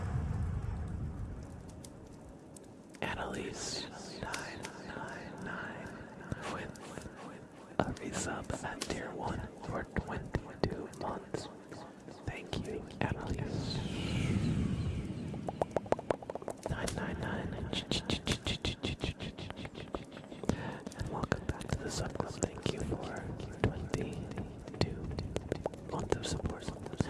Annalise 999 with a resub at tier 1 for 22 months. Thank you, Annalise. 999 and welcome back to the sub club. Thank you for 22 months of support.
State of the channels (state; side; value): identical; both; correlation 1.00